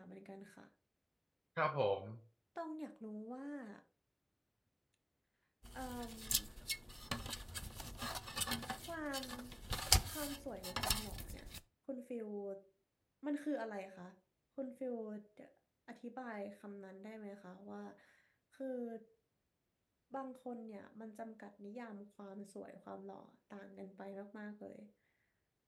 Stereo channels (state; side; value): identical; both; correlation 1.00